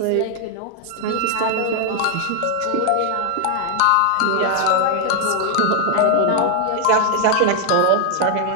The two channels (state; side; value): different; both; correlation 0.00